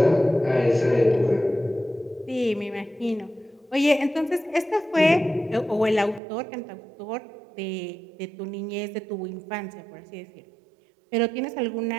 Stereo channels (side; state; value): left; drops out; at 6.2 s